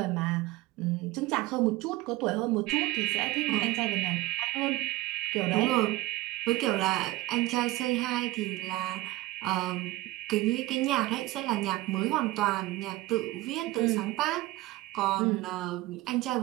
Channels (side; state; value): left; quieter; 18.4 dB